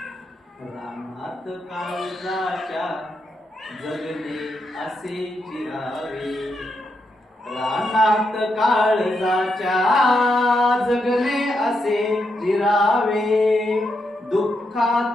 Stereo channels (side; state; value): both; normal; correlation 0.82